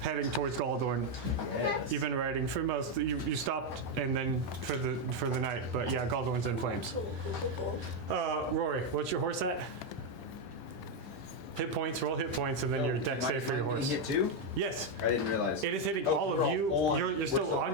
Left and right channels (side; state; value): both; normal; correlation 0.04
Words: towards Galdorn. Yes. You've been riding for most. You stopped and then for the night, but yeah, Galdorn's in flames. Cool. Rory, what's your horse at? Hit points. Roll hit points, and then your deck save for your horse. Hit 2? Yes, I didn't realize. it is hitting Oh, all of we're you. all on. You're still We're still on